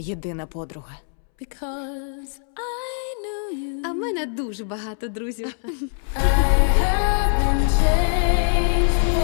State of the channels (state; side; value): silent; right; 64 dB below the other